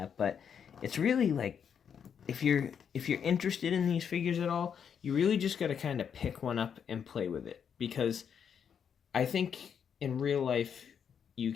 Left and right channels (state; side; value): quieter; right; 7.6 dB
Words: But it's really like, if you're interested in these figures at all, you really just got to kind of pick one up and play with it, because I think in real life you